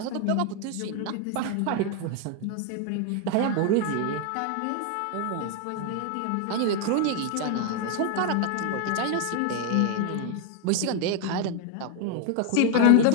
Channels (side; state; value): both; different; correlation 0.00